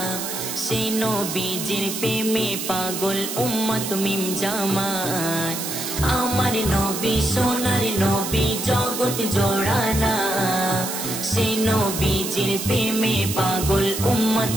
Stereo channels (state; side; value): noise; right; hiss, 5 dB below the sound